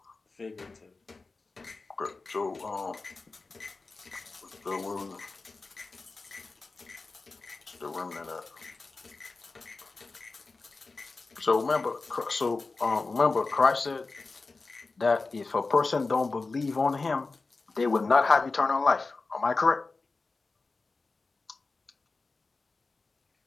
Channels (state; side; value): quieter; right; 3.8 dB